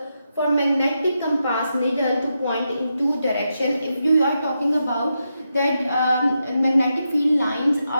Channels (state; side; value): inverted; both; correlation -0.86